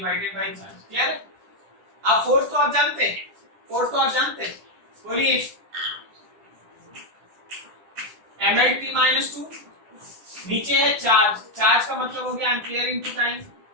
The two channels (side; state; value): left; late; 10 ms